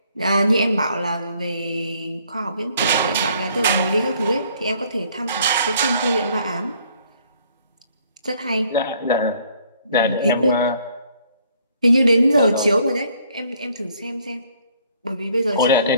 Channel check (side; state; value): both; inverted; correlation -0.63